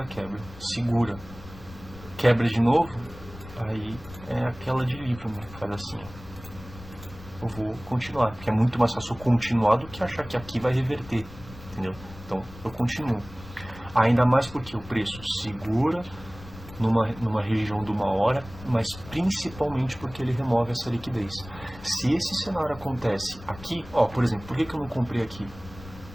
quebra, segura, quebra de novo, aí é aquela de livro, né? Faz assim, eu vou continuar, porque é muito mais fácil continuar do que achar que aqui vai reverter, entendeu? Então eu continuo, ainda mais porque o preço segura numa região de 1 hora, mas principalmente porque ele remove essa liquidez. Se esse cenário acontece aqui, ó, por exemplo, por que eu não comprei aqui?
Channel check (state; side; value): noise; left; rumble, 17 dB below the sound